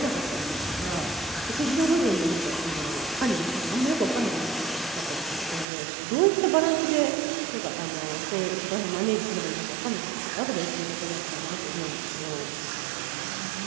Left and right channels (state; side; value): drops out; left; at 5.7 s